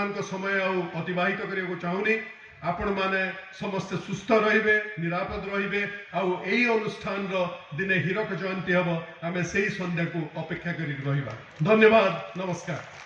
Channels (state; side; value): identical; both; correlation 1.00